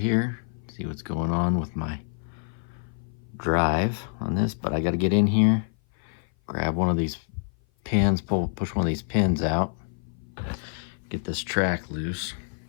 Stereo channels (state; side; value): silent; right; 56 dB below the other